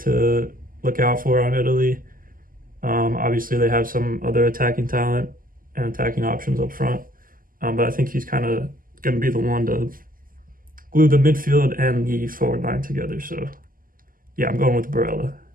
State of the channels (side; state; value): left; late; 0.41 ms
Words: look out for on Italy. Obviously, they have some other attacking talent and attacking options up front, but I think he's kind of going to be the one to glue the midfield and the forward line together. So, yeah, I'm going with Barella.